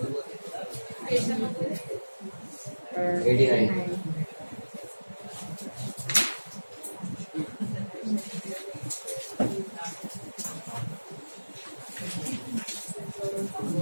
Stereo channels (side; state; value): both; inverted; correlation -1.00